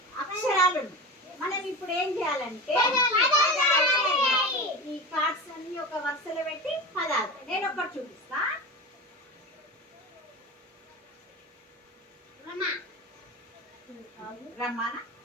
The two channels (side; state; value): both; normal; correlation 0.28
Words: అక్షరాలు. మనం ఇప్పుడు ఏం చేయాలంటే ఈ కార్డ్స్ అన్ని ఒక వరుసలో పెట్టి పదాలు. నేను ఒకటి చూపిస్తా. రమానా